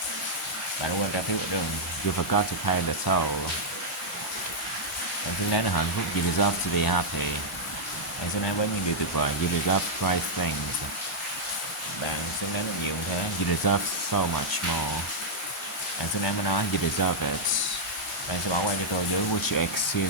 Bạn quên trả phiếu đường. You forgot to pay the toll. Bạn xứng đáng là hạnh phúc. You deserve to be happy. Bạn xứng đáng với những điều tuyệt vời. You deserve great things. Bạn xứng đáng được nhiều như thế. You deserve so much more. Bạn xứng đáng với nó. You deserve it. Bạn sẽ bỏ qua cho tôi dưới. Would you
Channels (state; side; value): normal; both; correlation -0.05